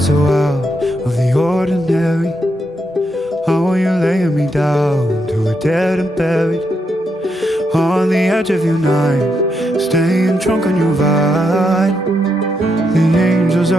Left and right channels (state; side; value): normal; both; correlation 0.81